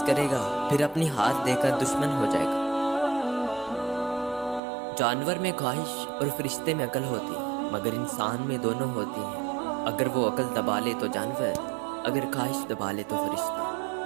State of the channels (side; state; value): left; drops out; at 4.6 s